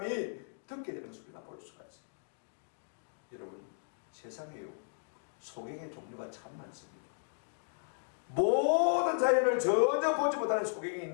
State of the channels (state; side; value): silent; right; digital silence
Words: 듣게 되는 것을 우리가 볼 수가 있습니다. 여러분, 세상에요, 소경의 종류가 참 많습니다. 모든 자연을 전혀 보지 못하는 소경이